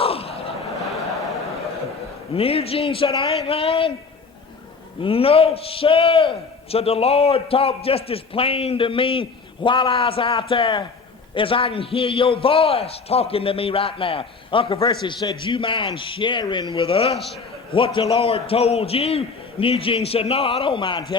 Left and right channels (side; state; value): right; quieter; 4.7 dB